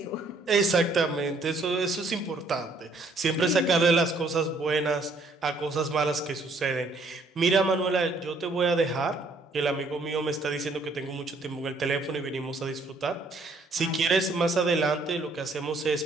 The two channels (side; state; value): left; quieter; 3.1 dB